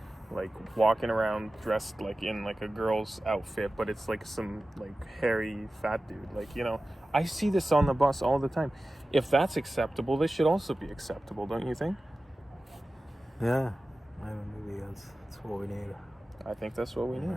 like walking around dressed like in like a girl's outfit, but it's like some like hairy fat dude. Like, you know, I see this on the bus all the time. If that's acceptable, this should also be acceptable, don't you think? Yeah, maybe that's what we need. I think that's what we need.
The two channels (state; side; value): normal; both; correlation 0.95